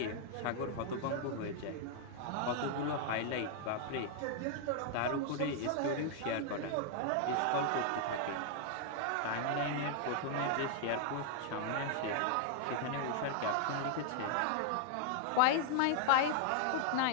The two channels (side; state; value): both; different; correlation 0.00